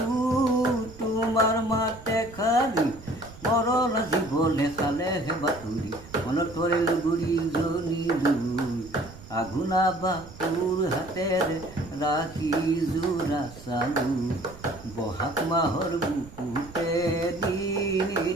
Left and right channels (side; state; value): right; noise; rumble, 18 dB below the sound